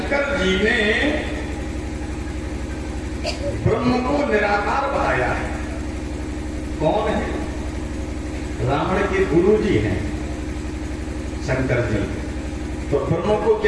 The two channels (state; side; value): identical; both; correlation 1.00